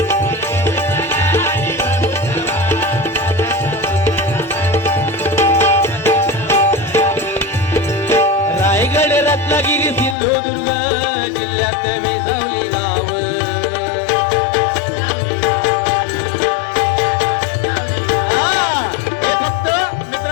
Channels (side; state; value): right; drops out; at 10.2 s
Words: रायगड रत्नागिरी सिंधुदुर्ग जिल्ह्यात विसावली गाव. हे फक्त